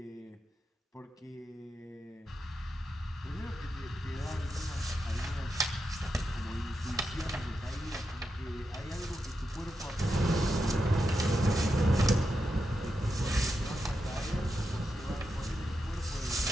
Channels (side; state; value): both; normal; correlation 0.87